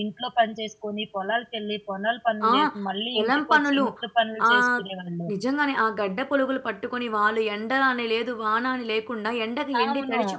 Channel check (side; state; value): both; identical; correlation 1.00